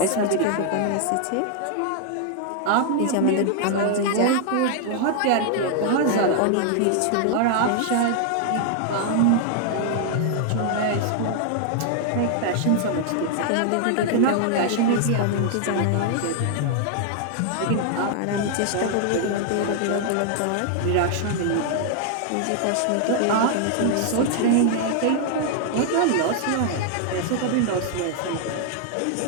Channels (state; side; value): different; both; correlation 0.00